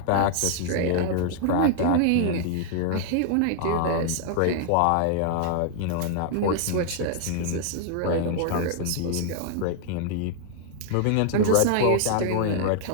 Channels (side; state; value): both; different; correlation 0.00